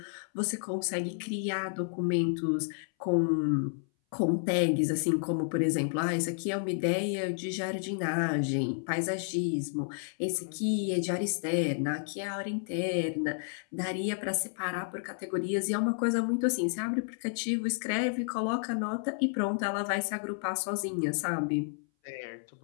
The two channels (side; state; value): right; silent; 57 dB below the other